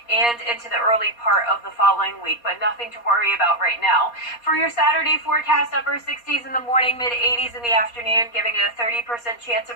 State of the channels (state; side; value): late; right; 4.2 ms